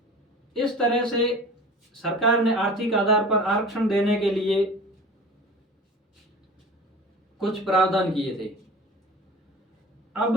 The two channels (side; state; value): both; normal; correlation 0.39